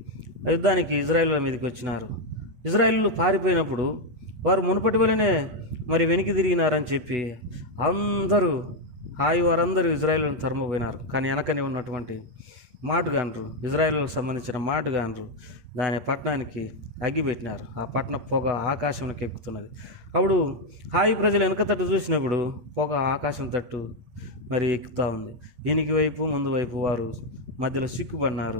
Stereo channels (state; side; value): late; left; 8.5 ms